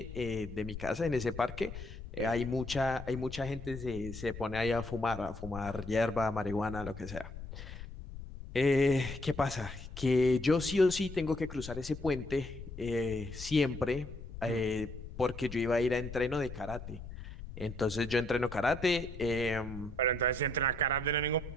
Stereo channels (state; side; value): noise; left; rumble, 11 dB below the sound